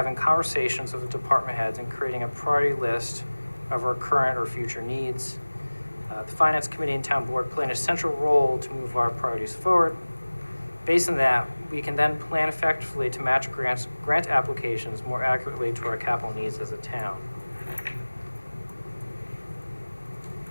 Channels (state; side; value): inverted; both; correlation -1.00